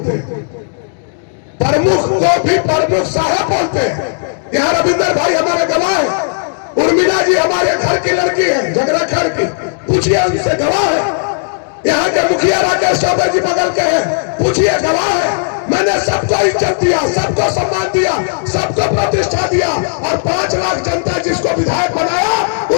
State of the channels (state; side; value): silent; right; digital silence